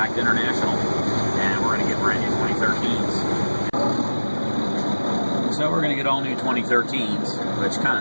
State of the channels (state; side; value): inverted; both; correlation -1.00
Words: to International, and we're going to get brand new 2013s. So we're going to get all new 2013s, which kind